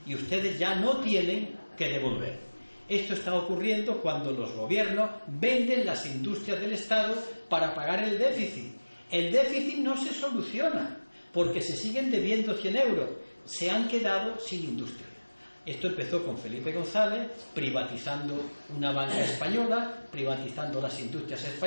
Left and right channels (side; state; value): both; inverted; correlation -1.00